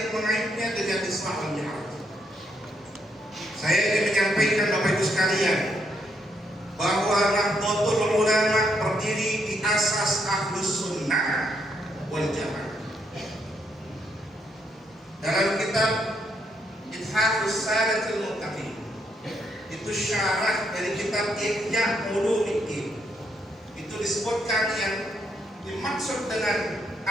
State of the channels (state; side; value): normal; both; correlation 0.76